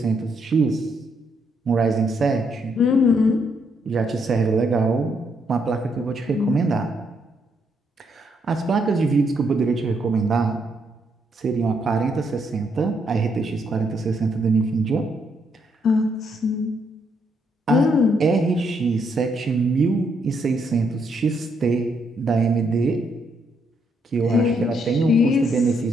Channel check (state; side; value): normal; both; correlation 0.75